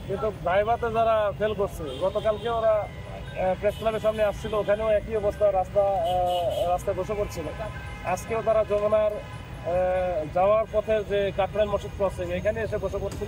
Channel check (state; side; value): identical; both; correlation 1.00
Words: কিন্তু ভাইভাতে যারা ফেল করছে, গতকালকে ওরা প্রেস ক্লাবের সামনে আসছিল, ওখানেও একই অবস্থা, রাস্তায় বসে পড়ছিল। আজকেও তারা যমুনার যাওয়ার পথে যে কাকরাইল মসজিদ ক্রসিং এখানে এসে বসে